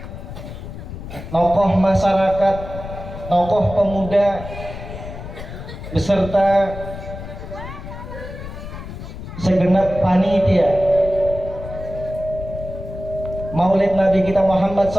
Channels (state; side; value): noise; left; rumble, 10 dB below the sound